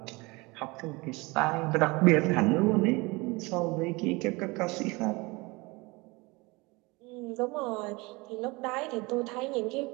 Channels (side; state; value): left; quieter; 24.7 dB